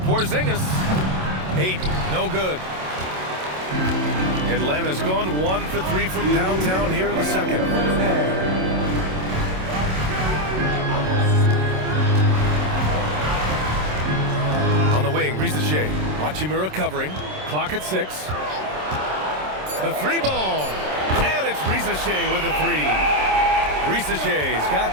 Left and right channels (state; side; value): late; left; 27 ms